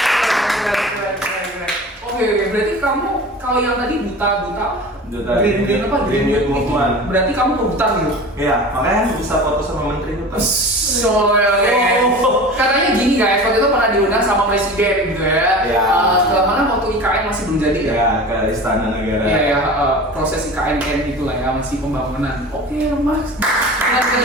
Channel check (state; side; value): normal; both; correlation 0.36